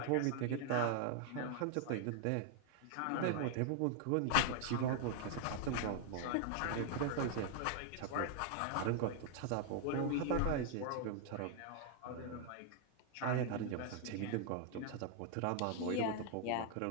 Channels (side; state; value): both; different; correlation 0.00